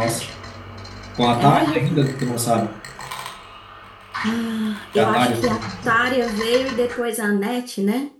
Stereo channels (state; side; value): identical; both; correlation 1.00